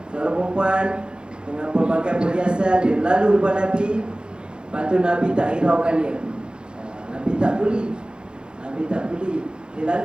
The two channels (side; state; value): left; late; 0.050 ms